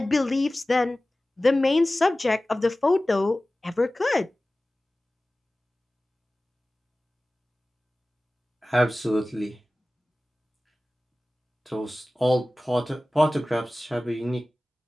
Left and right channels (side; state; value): both; normal; correlation 0.97